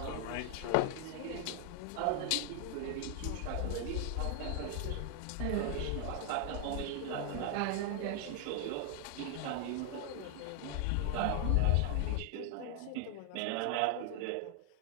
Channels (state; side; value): different; both; correlation 0.00